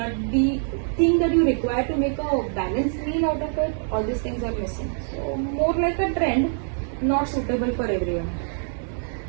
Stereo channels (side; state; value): left; silent; digital silence